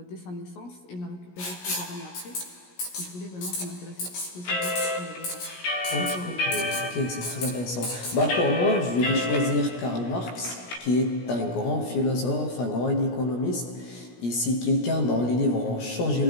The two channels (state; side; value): late; right; 17 ms